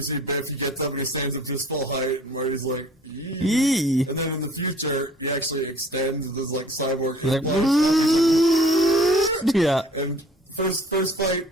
see Biff, he gets up and he stands up to his full height, and Marty's like, Yee. And then in the future, he actually extends this like cyborg. Like, yeah. And first fight,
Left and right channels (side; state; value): both; normal; correlation 0.52